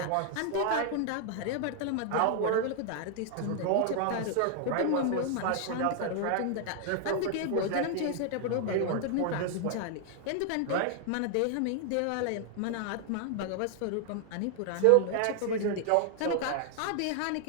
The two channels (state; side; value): different; both; correlation 0.00